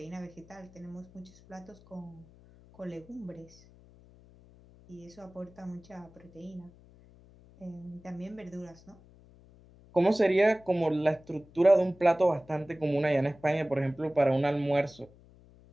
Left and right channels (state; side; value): noise; left; hum, 25 dB below the sound